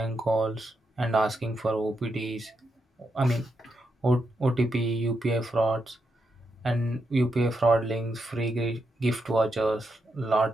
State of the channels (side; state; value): both; normal; correlation 0.83